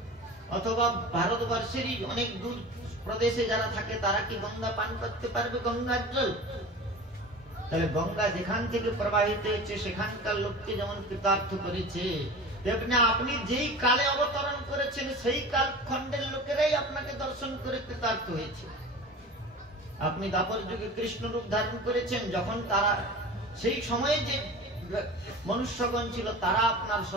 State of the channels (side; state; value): both; normal; correlation 0.35